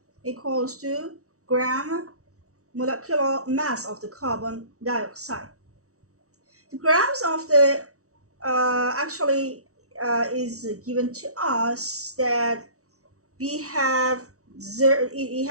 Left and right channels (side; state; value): left; late; 0.64 ms